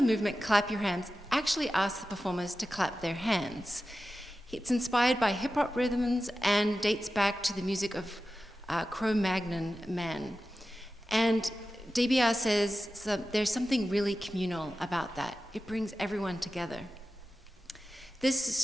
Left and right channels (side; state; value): both; normal; correlation 0.94